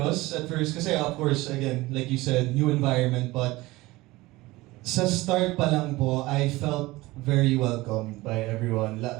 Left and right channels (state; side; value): quieter; left; 19.9 dB